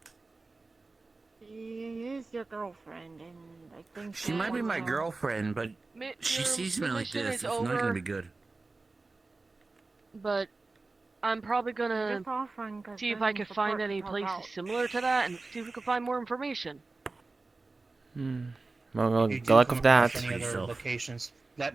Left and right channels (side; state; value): left; quieter; 3.6 dB